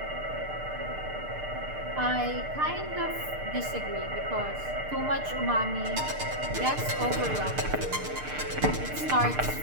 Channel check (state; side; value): late; left; 6.7 ms